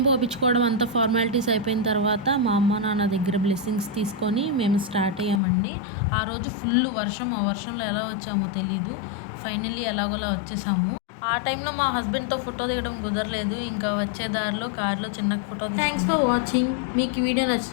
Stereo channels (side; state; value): right; drops out; at 5.4 s